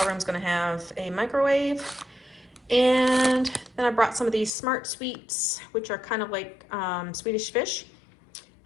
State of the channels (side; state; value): right; drops out; at 4.5 s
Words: room's gonna have a microwave. And then I brought some of these Smart Sweets, which are kind of like Swedish fish.